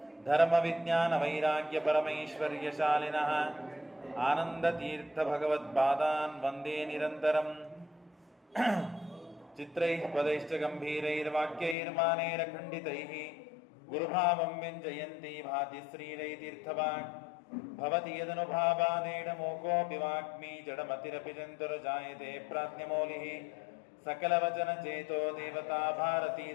धर्मविज्ञानवैराग्यपरमैश्वर्यशालिनः आनन्दतीर्थभगवत्पादान् वन्दे निरन्तरम् चित्रैः पदैश्च गम्भीरैर्वाक्यैर्मानैरखण्डितैः गुरुभावं व्यञ्जयन्ती भाति श्रीरैतीर्थवाक् भवति यदनुभावादेडमोकोऽपि वाग्मी जडमतिरपि जन्तुर्जायते प्राज्ञमौलिः सकलवचनचेतो देवता भारती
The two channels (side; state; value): right; drops out; at 11.8 s